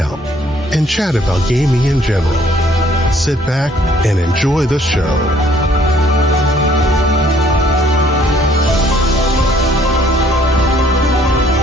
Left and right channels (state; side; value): normal; both; correlation 0.62